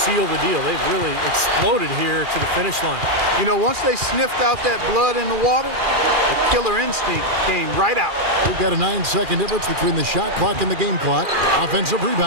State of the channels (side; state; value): left; late; 2.4 ms